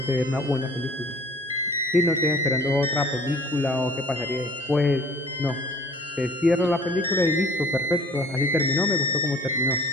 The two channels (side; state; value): both; normal; correlation 0.50